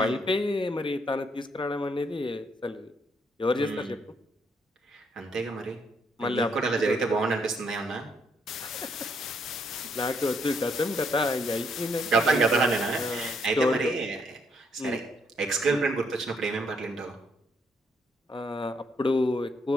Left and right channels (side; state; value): both; normal; correlation 0.72